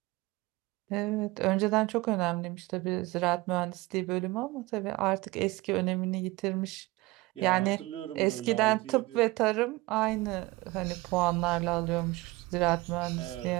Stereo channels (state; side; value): quieter; left; 21.1 dB